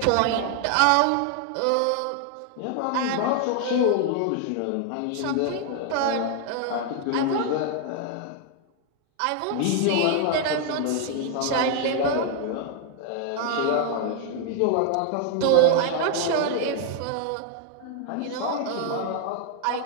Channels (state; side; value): different; both; correlation 0.00